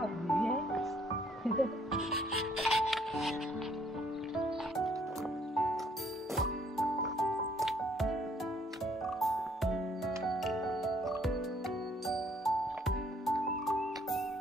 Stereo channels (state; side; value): normal; both; correlation 0.65